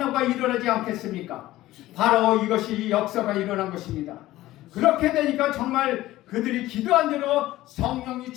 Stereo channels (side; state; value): right; quieter; 16.1 dB